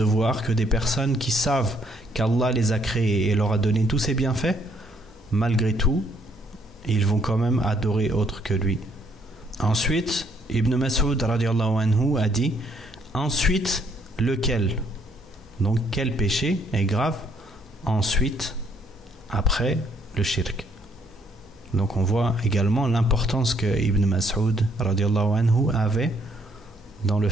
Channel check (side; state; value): both; normal; correlation 0.68